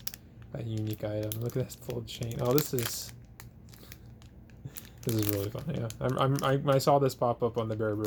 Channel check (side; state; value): both; identical; correlation 1.00